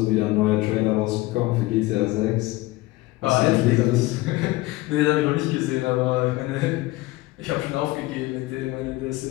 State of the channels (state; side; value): quieter; right; 19.4 dB